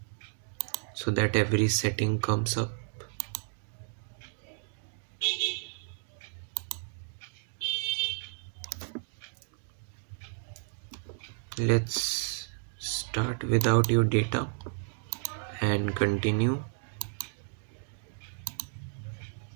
so that every setting comes up. Let's start without your data and continue.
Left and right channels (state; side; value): silent; left; 56 dB below the other